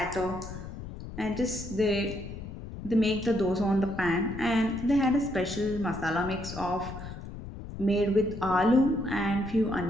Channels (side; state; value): left; noise; rumble, 11 dB below the sound